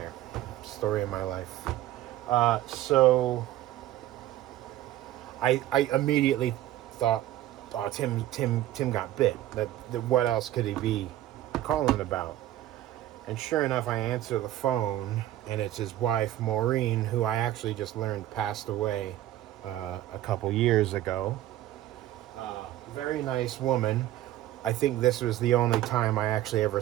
Story of my life. So I immediately thought, oh, Tim got bit. That what else could he be calling about? And sure enough, I answer the phone, and it's his wife, Maureen, who I actually just learned passed away a couple years ago. Very nice woman. I think this was the only time I actually ever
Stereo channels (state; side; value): quieter; left; 13.9 dB